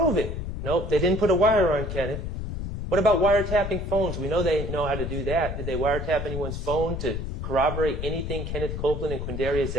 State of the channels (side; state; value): left; noise; rumble, 4 dB below the sound